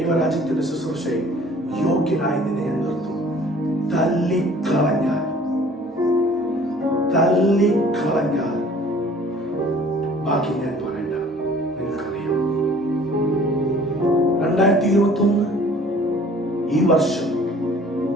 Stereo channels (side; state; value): both; normal; correlation 0.52